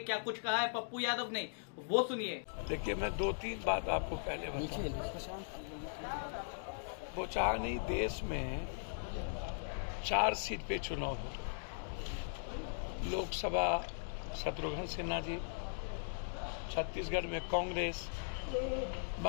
कुछ कहा है पप्पू यादव ने, वो सुनिए। देखिए, मैं 2-3 बात आपको पहले बताऊं। बोचहा नहीं, देश में 4 सीट पे चुनाव हो। लोकसभा शत्रुघ्न सिन्हा जी, छत्तीसगढ़ में कांग्रेस,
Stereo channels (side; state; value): right; silent; digital silence